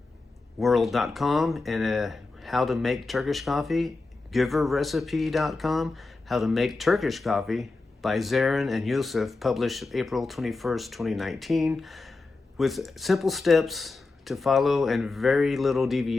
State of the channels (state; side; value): quieter; right; 3.6 dB